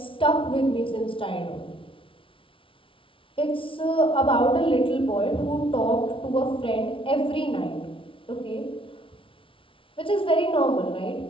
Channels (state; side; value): late; right; 0.25 ms